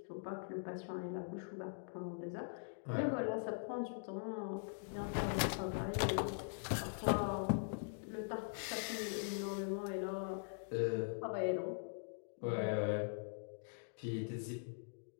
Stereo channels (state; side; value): silent; right; digital silence